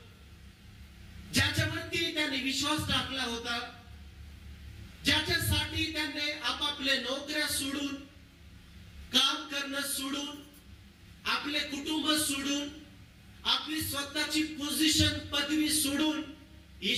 ज्याच्यावरती त्याने विश्वास टाकला होता, ज्याच्यासाठी त्यांनी आपापले नोकऱ्या सोडून, काम करणं सोडून, आपले कुटुंब सोडून, आपली स्वतःची पोझिशन, पदवी सोडून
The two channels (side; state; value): both; identical; correlation 1.00